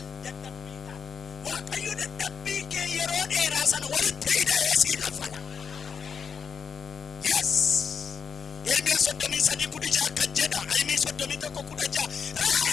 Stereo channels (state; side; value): quieter; right; 6.6 dB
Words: dadhabbiidhaan. Waaqayyo dadhabbii kee yeroo dheeraa sana walitti hidhee sii kaffala. Yes. Ermiyaa 33:16 akka jedha. Ayimii 31:16.